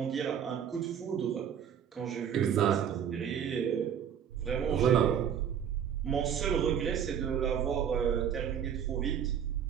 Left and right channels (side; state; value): left; quieter; 8.5 dB